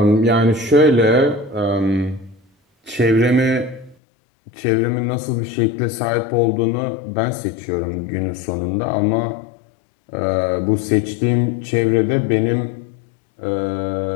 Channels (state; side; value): drops out; right; at 4.0 s